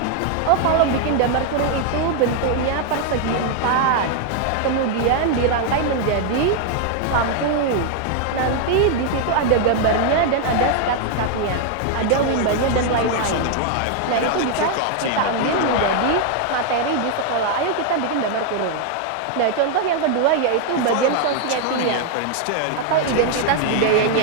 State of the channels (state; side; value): different; both; correlation 0.00